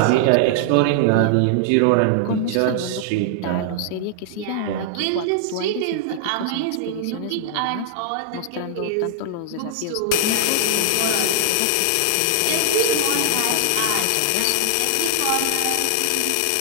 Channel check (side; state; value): both; different; correlation 0.00